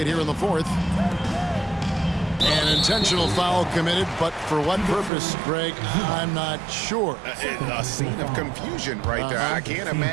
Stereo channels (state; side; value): drops out; left; at 5.1 s